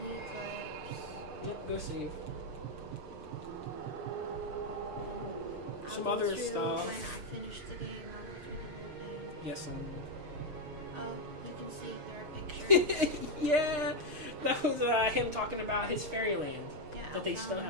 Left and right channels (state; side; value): late; left; 6.6 ms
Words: the eclipse. Yep, go save. I'll Some go other through stuff. When I finish the game, I'll go through the whole thing. Yes, Oh, you can see there are pictures. yeah, that was him talking about his fairyland Yeah, that they still Alpha.